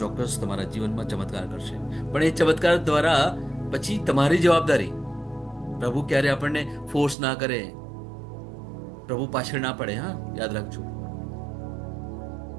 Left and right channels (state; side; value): drops out; left; at 7.2 s